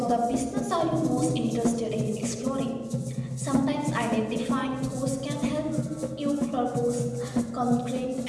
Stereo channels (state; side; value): identical; both; correlation 1.00